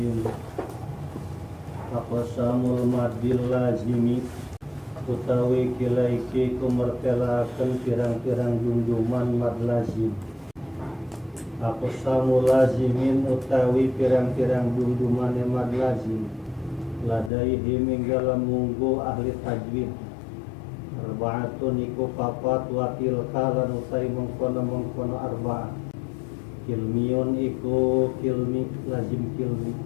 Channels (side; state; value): right; drops out; at 17.3 s